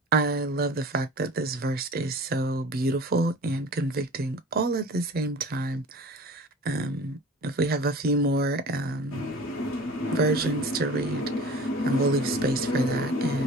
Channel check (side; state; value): both; normal; correlation 0.40